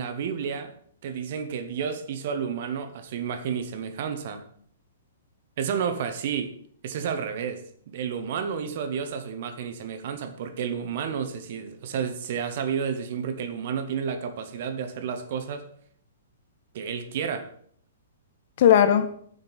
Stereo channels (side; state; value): both; inverted; correlation -0.40